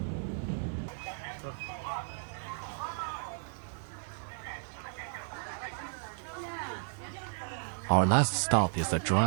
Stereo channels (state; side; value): silent; left; 55 dB below the other